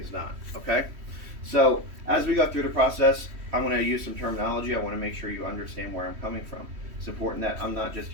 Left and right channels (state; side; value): late; left; 3.1 ms